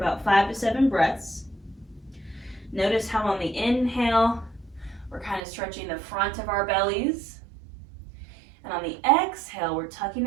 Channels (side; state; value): left; drops out; at 5.4 s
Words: 5 to 7 breaths, notice how on the inhale, we're kind of stretching the front of our bellies. And on the exhale, we're tucking